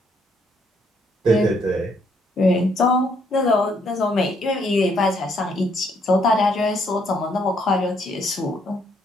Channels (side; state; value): both; normal; correlation 0.70